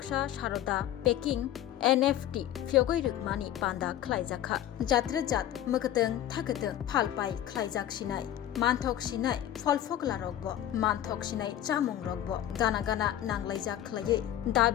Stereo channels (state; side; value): quieter; right; 11.9 dB